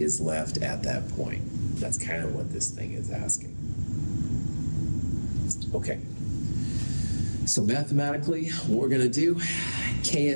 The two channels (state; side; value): inverted; both; correlation -1.00